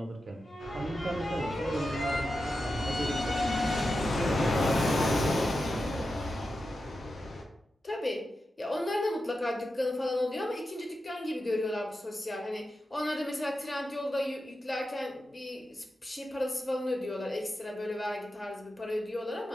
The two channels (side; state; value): both; normal; correlation 0.90